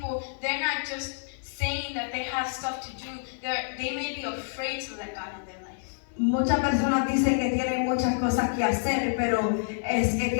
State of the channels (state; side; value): silent; right; 56 dB below the other